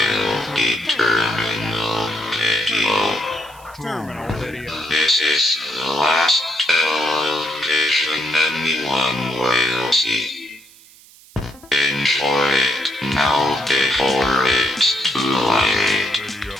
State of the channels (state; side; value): noise; right; hiss, 24 dB below the sound